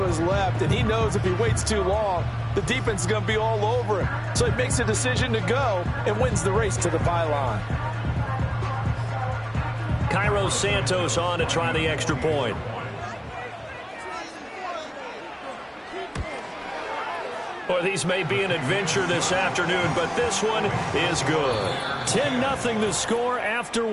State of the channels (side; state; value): both; identical; correlation 1.00